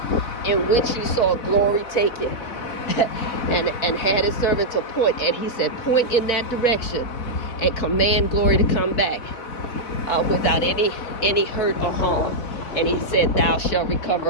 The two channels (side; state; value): right; late; 3.9 ms